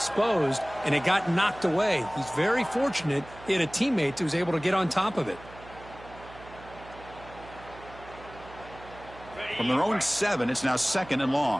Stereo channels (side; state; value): right; noise; hum, 18 dB below the sound